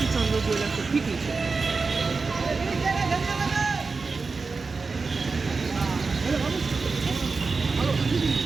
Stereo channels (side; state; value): left; quieter; 4.3 dB